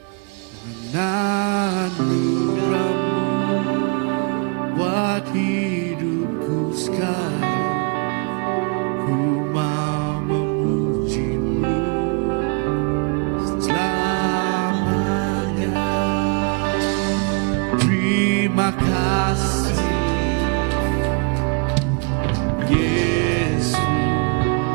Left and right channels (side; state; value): left; quieter; 33.1 dB